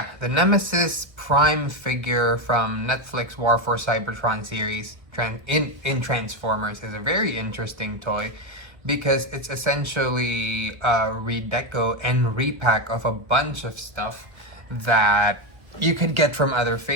the Nemesis Prime figure from Netflix War for Cybertron series in Transformers is a very interesting toy because it's essentially a redeco and repack of a bunch of stuff that you could get from other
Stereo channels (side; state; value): left; late; 1.0 ms